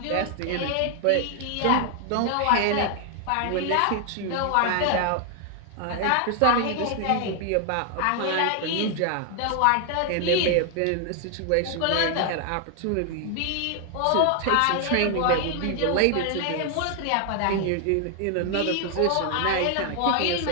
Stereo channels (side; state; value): both; different; correlation 0.00